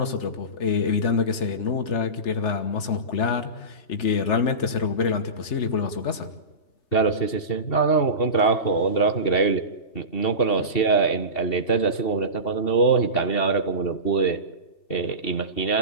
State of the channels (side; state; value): right; late; 3.4 ms